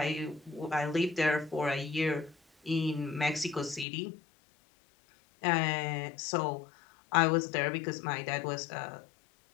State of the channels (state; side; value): drops out; right; at 3.9 s